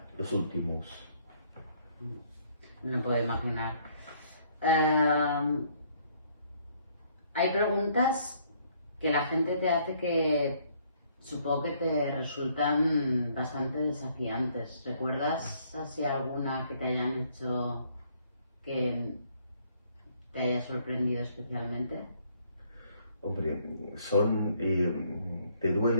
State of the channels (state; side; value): inverted; both; correlation -0.65